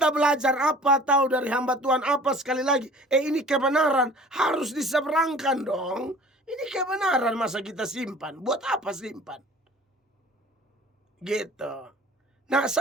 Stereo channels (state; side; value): normal; both; correlation 0.47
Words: belajar apa, tahu dari hamba Tuhan apa, sekali lagi. Ini kebenaran, harus diseberangkan dong. Ini kebenaran, masa kita simpan? Buat apa simpan? Gitu. Nah,